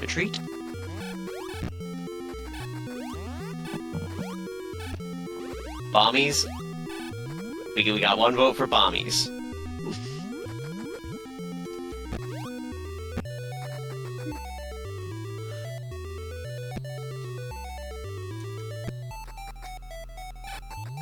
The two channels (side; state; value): left; noise; hum, 24 dB below the sound